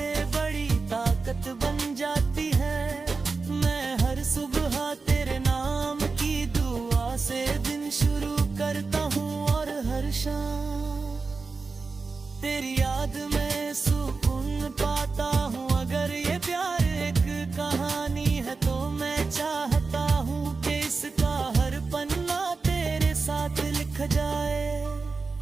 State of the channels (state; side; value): quieter; left; 4.3 dB